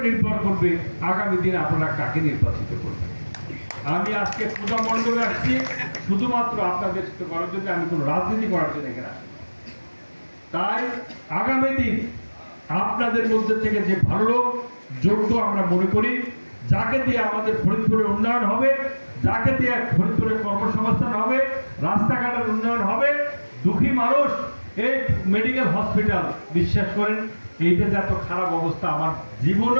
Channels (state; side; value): inverted; both; correlation -1.00